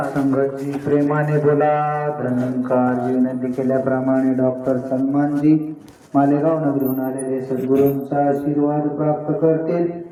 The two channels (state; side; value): identical; both; correlation 1.00